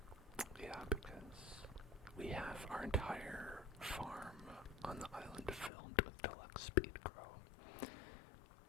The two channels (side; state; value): right; drops out; at 5.7 s